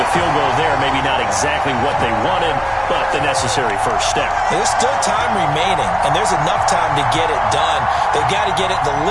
field goal there, maybe not exactly what they wanted, but the necessary first step. There's still time remaining, and there's enough time to get it done. They've got to get at the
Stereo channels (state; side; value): identical; both; correlation 1.00